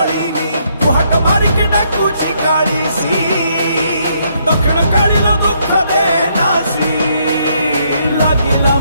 कुहाट मारिके डाकुची काळीसी दक्षिण काळीला दुःख दे नासी लागिला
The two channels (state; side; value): inverted; both; correlation -0.72